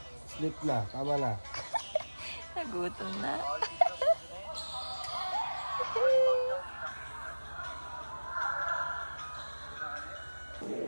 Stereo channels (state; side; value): inverted; both; correlation -1.00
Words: Sleep na. Tama na. Nagutom na.